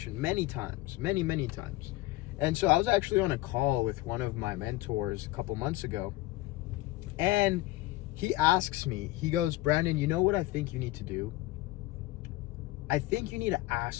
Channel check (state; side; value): quieter; right; 18.3 dB